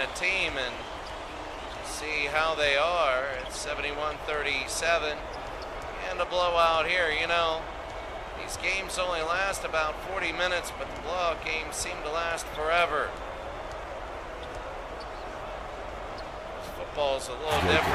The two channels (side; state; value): both; identical; correlation 1.00